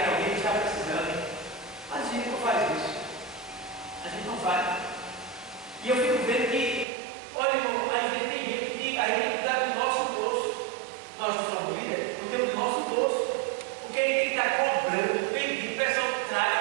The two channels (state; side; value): drops out; left; at 6.9 s